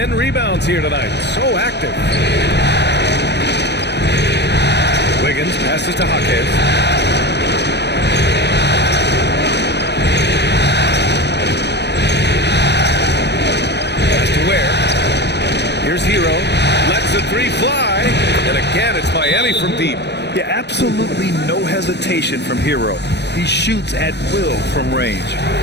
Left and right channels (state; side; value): late; right; 0.50 ms